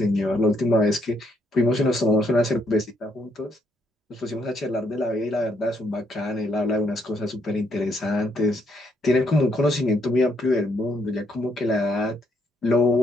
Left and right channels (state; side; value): normal; both; correlation 0.72